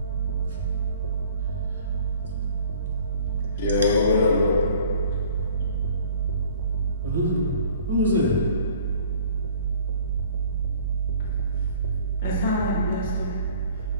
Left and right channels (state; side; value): inverted; both; correlation -0.51